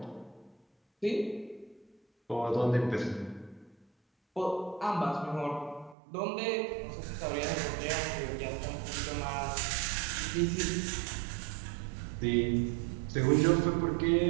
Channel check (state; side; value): drops out; left; at 6.0 s